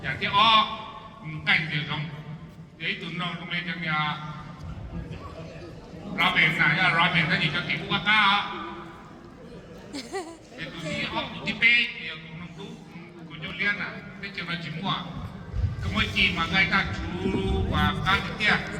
Jadi kan dia dong. Jadi tu nak macam ni Robin nah, Robin tadi ke ibu kakak. Itu dia di page dia ngomong tu, Julian nah, dia cuma semua. Kemudian makai tak curu, kan dia.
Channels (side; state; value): both; identical; correlation 1.00